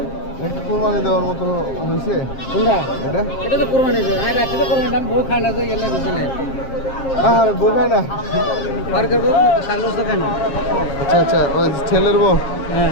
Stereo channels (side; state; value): right; late; 7.5 ms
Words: কোরবানি দেওয়ার মতো হয়েছে কোনটা? এটা এটা তো কোরবানি দেয়। আর রাখি তো কোরবানি আমি বউ খাই না তো গেলে বুঝলে। আর বউ খায় না? আর করবো সাগরস তো খাই না। আচ্ছা আচ্ছা ওই ছেলের বউ